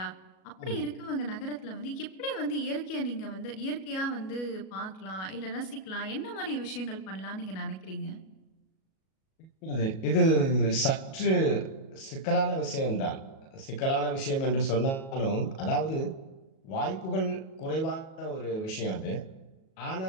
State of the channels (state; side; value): late; right; 37 ms